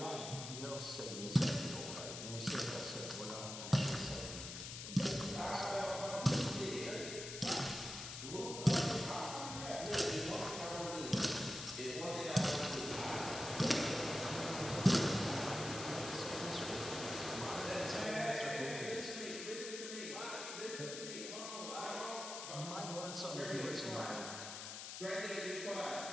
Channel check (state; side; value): noise; left; hiss, 7 dB below the sound